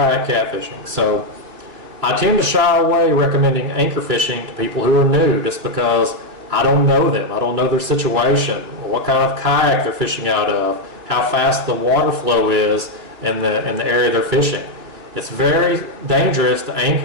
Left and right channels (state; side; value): late; left; 2.9 ms